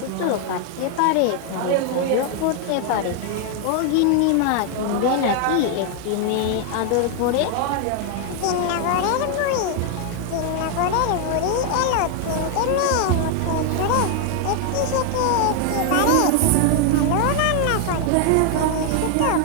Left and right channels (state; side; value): different; both; correlation 0.00